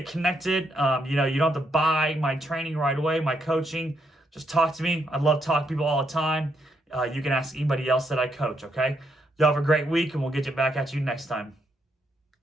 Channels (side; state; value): both; normal; correlation 0.78